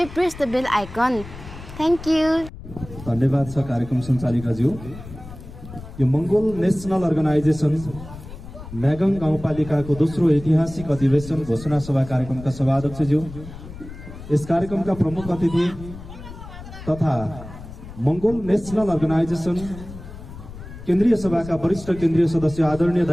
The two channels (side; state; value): left; noise; rumble, 14 dB below the sound